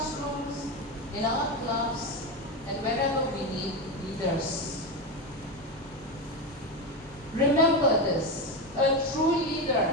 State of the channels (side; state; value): both; normal; correlation 0.15